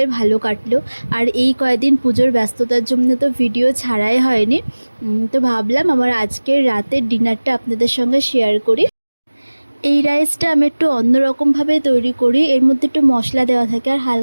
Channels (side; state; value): both; inverted; correlation -1.00